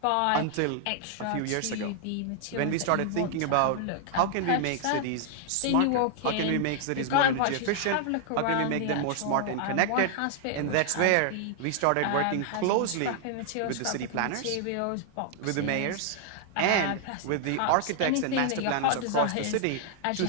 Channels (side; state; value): both; different; correlation 0.00